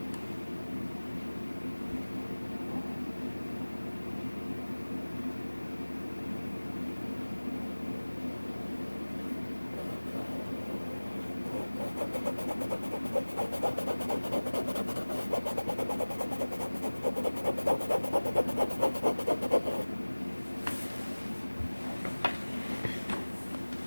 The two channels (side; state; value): both; inverted; correlation -1.00